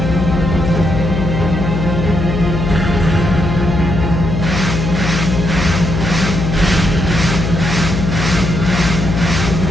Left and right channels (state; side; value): noise; left; hum, 2 dB below the sound